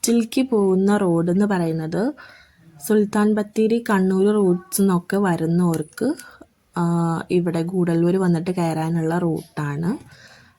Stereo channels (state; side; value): identical; both; correlation 1.00